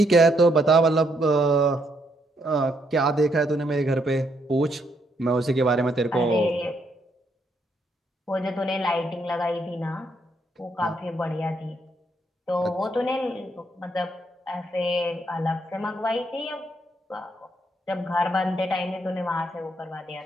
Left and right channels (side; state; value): both; normal; correlation 0.74